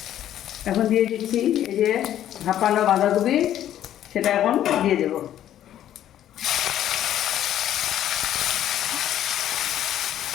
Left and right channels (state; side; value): quieter; right; 11.5 dB